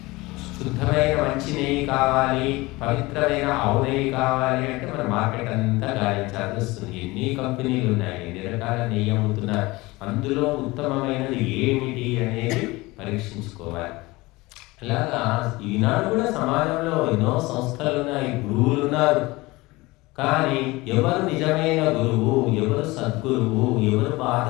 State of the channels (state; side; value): quieter; right; 21.6 dB